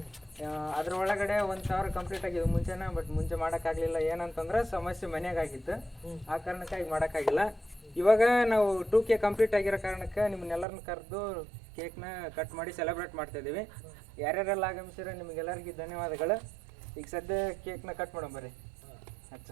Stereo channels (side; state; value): left; drops out; at 10.7 s